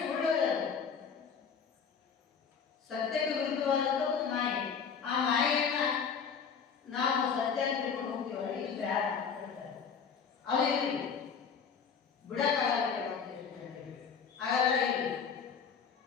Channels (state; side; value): quieter; right; 6.4 dB